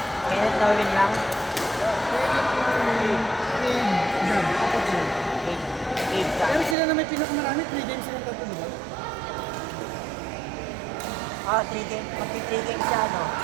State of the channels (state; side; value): drops out; left; at 6.8 s